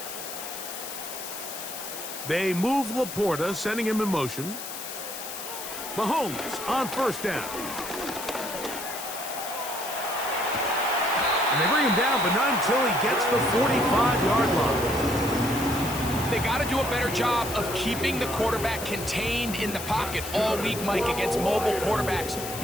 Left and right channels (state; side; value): noise; left; hiss, 9 dB below the sound